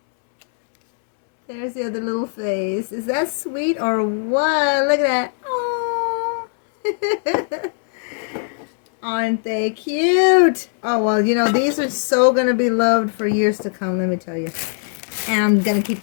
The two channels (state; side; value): silent; right; 66 dB below the other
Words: There's the other little face. Is that sweet or what? Look at that. Oh. Aren't they cute? Oh, well, you know, these are so going to be loved for years to come, let me tell you. And I'm going to keep